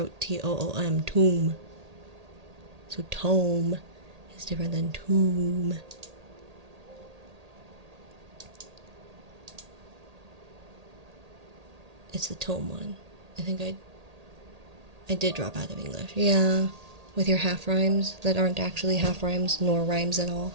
Toom, tomb. So tome is different than tomb. It's the tome one. I think I did drop out of English. Yeah, with your half rhymes that aren't actually half rhymes nor rhymes at all.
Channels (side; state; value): left; late; 1.8 ms